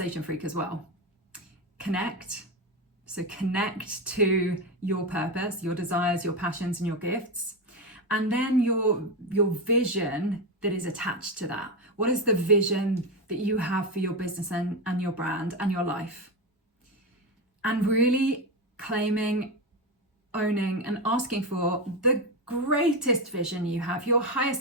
FREQ as well. Connect. So connect to your purpose, your desires, your passions, and your gifts. And then your vision that is attached to that. What is the vision that you have for your business and your brand and your life? And really claiming, owning, and asking for the greatest vision you have, your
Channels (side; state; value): both; normal; correlation 0.14